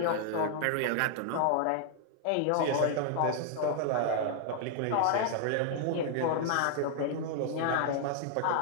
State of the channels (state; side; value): different; both; correlation -0.01